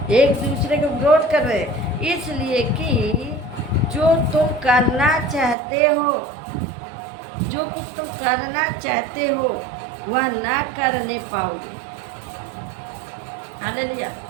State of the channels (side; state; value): left; drops out; at 5.6 s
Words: एक दूसरे को विरोध कर रहे हैं। इसलिए कि जो तुम करना चाहते हो, जो कुछ तुम करना चाहते हो वह ना करने पाओगे। हालेलुया।